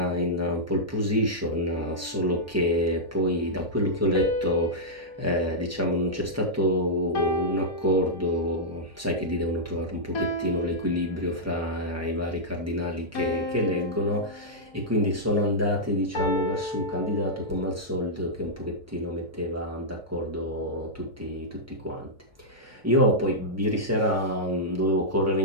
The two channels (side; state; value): both; normal; correlation -0.08